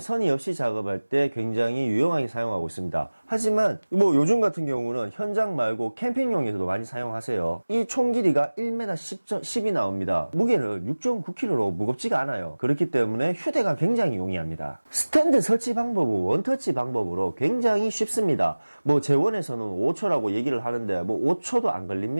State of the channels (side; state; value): both; inverted; correlation -1.00